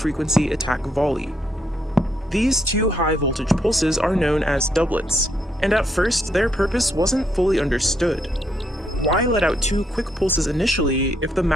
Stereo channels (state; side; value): normal; both; correlation 0.75